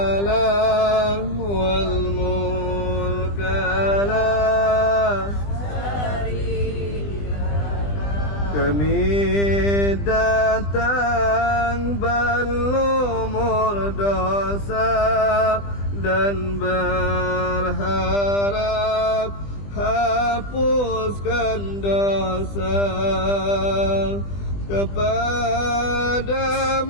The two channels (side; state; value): right; late; 20 ms